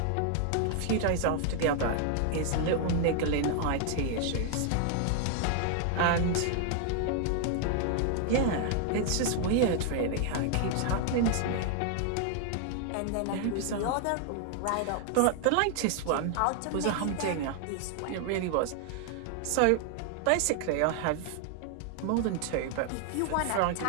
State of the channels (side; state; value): both; different; correlation 0.00